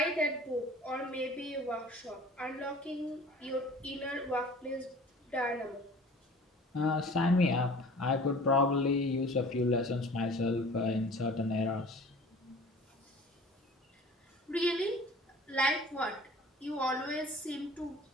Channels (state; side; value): normal; both; correlation 0.45